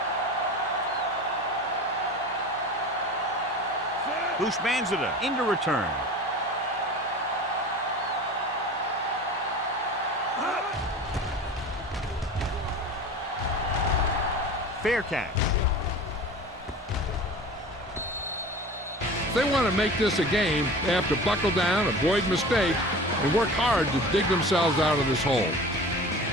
Bushmanzada into return. Fair catch. If they want to make this a game, they have to buckle down, avoid mistakes, and work hard to dig themselves out of this hole.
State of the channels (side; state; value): both; normal; correlation 0.37